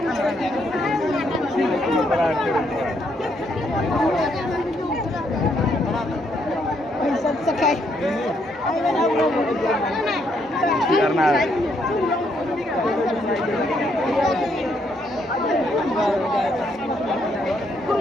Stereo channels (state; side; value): normal; both; correlation 0.73